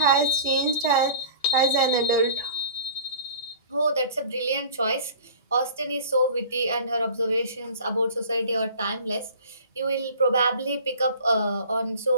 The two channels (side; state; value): both; inverted; correlation -0.43